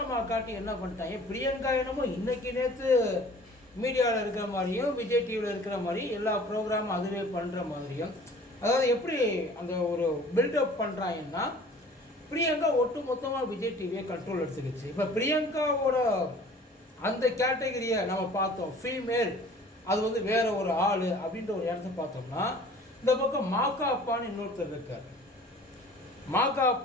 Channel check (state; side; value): normal; both; correlation 0.48